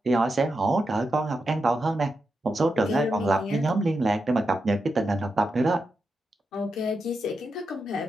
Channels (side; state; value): both; normal; correlation 0.87